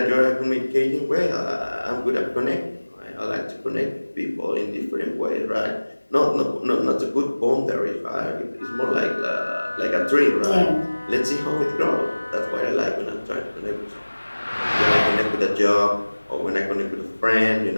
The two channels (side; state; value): both; inverted; correlation -1.00